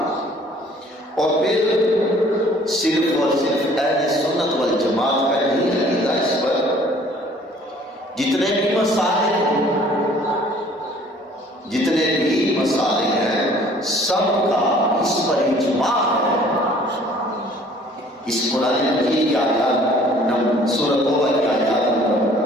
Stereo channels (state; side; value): normal; both; correlation 0.55